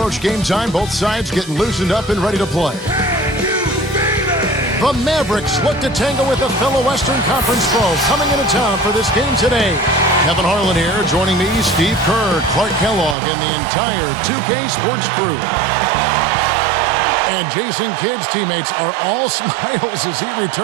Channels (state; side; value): drops out; left; at 13.2 s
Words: game time, both sides getting loosened up and ready to play. The Mavericks look to tangle with a fellow Western Conference foe coming into town for this game today. Kevin Harlan here, joining me, Steve Kerr, Clark Kellogg, and the entire 2K Sports crew. And Jason Kidd's teammates are all smiles as he